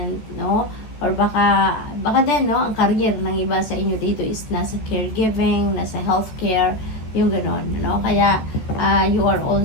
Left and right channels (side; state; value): right; late; 14 ms